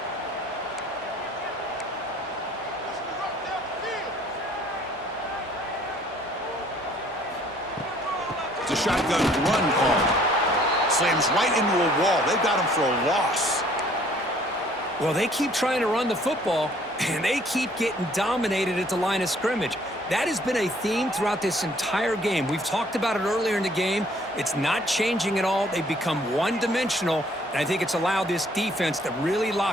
It's a shotgun run call. Slams right into a wall. They've got him for a loss. Well, they keep trying to run the football, and they keep getting dominated at the line of scrimmage. That has been a theme throughout this entire game. We've talked about it earlier in the game. It's not changing at all. They've become one-dimensional, and I think it's allowed this defense to really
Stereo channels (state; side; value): normal; both; correlation 0.59